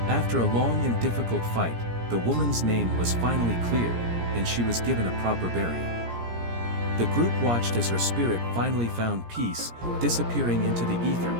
After a long and difficult fight, the woman's name was finally cleared, and she was given a proper burial. The group watched as her spirit finally found peace, disappearing into the ether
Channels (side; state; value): left; late; 17 ms